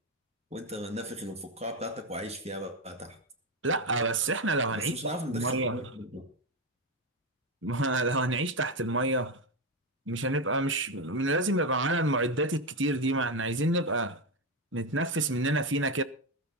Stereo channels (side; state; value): both; normal; correlation 0.10